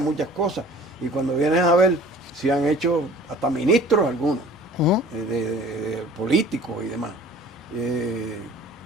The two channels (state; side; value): normal; both; correlation 0.47